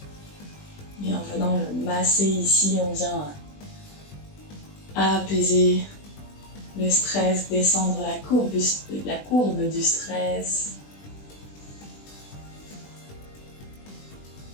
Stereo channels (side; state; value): right; late; 20 ms